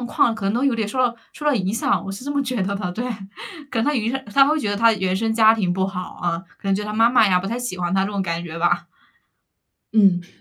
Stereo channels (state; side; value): identical; both; correlation 1.00